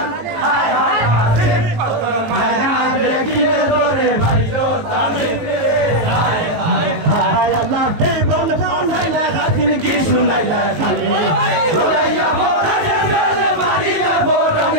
হায় হায় হায় দেখিলে ধরে ভাইরো তামিলে হায় হায় হায় আল্লাহ তে বল বল হাইলা গাছিন কি শুনাইলা খালি ওরাইয়া বড়ানে বেলে মারিয়া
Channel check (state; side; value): late; left; 18 ms